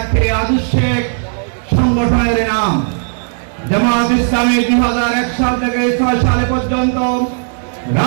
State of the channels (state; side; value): silent; left; digital silence